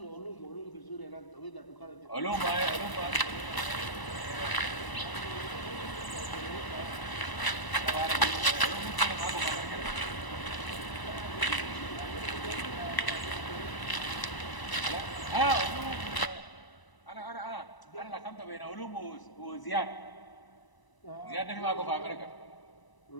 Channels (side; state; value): right; late; 1.0 ms